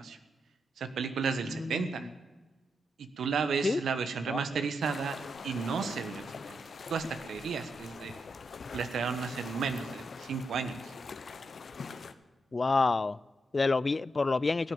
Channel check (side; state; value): both; normal; correlation 0.83